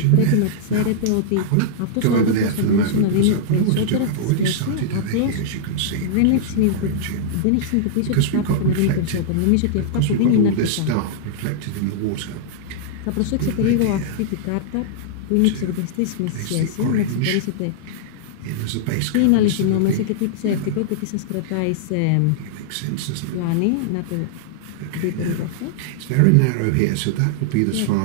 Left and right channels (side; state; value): both; different; correlation -0.01